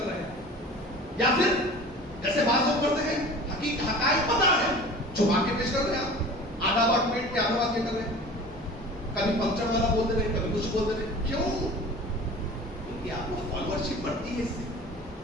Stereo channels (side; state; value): both; normal; correlation 0.40